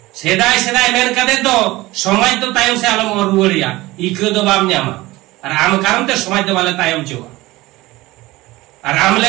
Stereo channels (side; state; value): left; quieter; 19.3 dB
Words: सेदाय सेदाय मेन कदे तो समाज तो तायम से आलम और रुवरिया इको दो बाम न्यामा और आम कारण ते समाज दो वाले तायम चोवा और आम